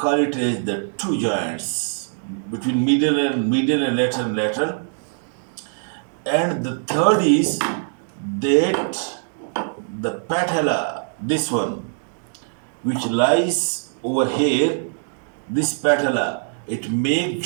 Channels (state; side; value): silent; left; digital silence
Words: it as the two joints between medial and lateral. And the third is that the patella, this one, which lies over here, this patella, it make